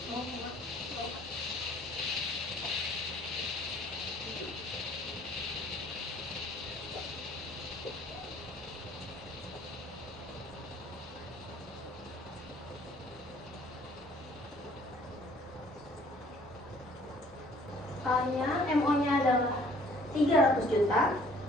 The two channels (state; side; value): noise; right; hum, 25 dB below the sound